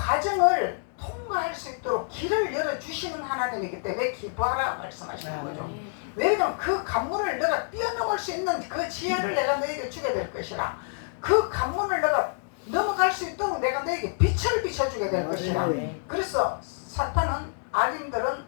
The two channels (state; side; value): silent; right; digital silence